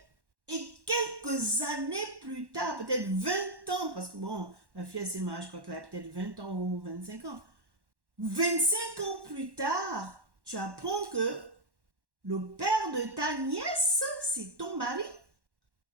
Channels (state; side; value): late; left; 1.1 ms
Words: et quelques années plus tard, peut-être 20 ans, parce que bon, la fille a ses mariés, je crois qu'elle a peut-être 20 ans ou 25 ans. 25 ans plus tard, tu apprends que le père de ta nièce, c'est ton mari.